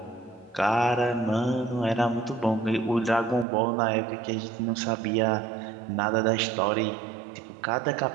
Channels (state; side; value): drops out; left; at 3.5 s